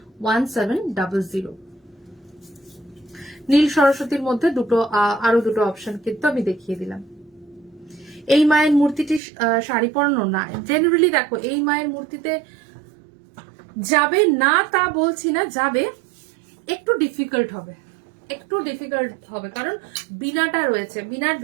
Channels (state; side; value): drops out; left; at 9.2 s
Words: 1700। নীল সরস্বতীর মধ্যে আরো দুটো অপশন কিন্তু আমি দেখিয়ে দিলাম। এই মায়ের মূর্তিটি শাড়ি পরানো না, জেনারেলি দেখো এই মায়ের মূর্তিতে যাবে না তা বলছি না, যাবে, একটু ডিফিকাল্ট হবে কারণ বিনাটা রয়েছে, বিনার